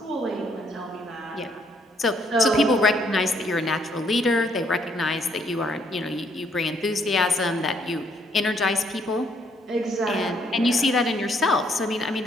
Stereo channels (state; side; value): normal; both; correlation 0.69